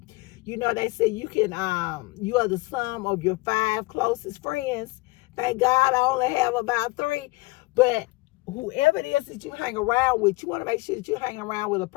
You know, they say you are the sum of your 5 closest friends. Thank God I only have about 3. But whoever it is that you hang around with, you want to make sure that you hang around with a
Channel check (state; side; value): quieter; right; 23.2 dB